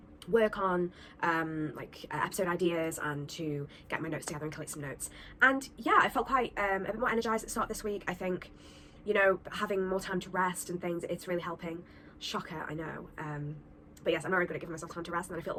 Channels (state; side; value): identical; both; correlation 1.00